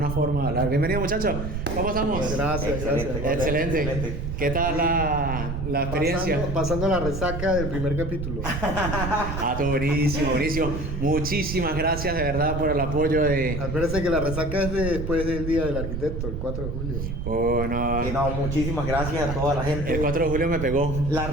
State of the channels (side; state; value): right; noise; rumble, 4 dB below the sound